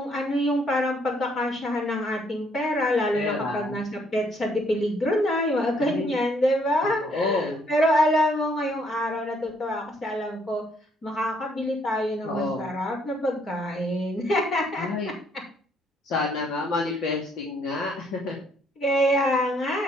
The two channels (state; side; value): normal; both; correlation 0.68